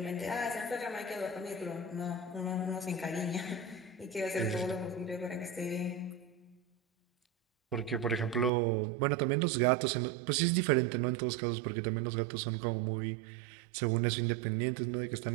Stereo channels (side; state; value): left; drops out; at 8.5 s